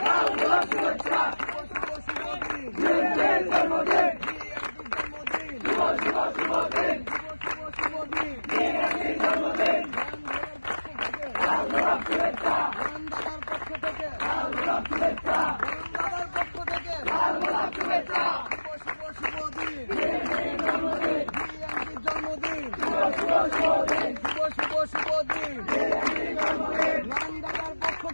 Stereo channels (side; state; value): both; inverted; correlation -1.00